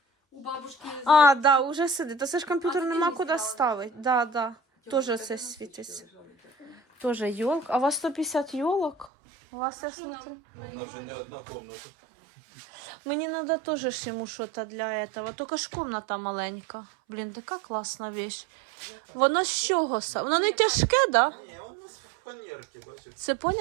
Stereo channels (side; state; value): left; drops out; at 9.1 s